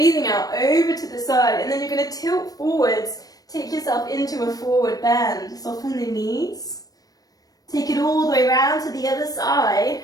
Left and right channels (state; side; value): late; right; 0.18 ms